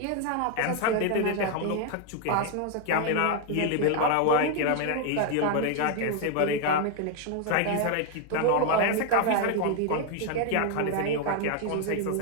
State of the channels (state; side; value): different; both; correlation 0.01